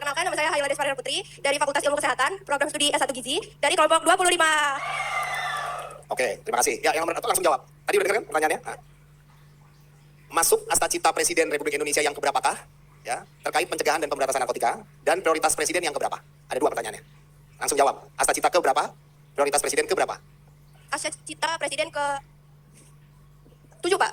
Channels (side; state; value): both; identical; correlation 1.00